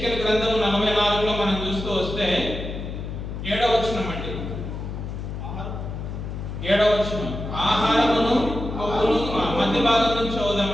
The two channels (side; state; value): left; noise; hum, 7 dB below the sound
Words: గ్రంథము 44లో మనం చూస్తూ వస్తే 7వ వచనం అండి. 7వ వచనం, ఆహారమును కొవ్వును మధ్య భాగం నుంచి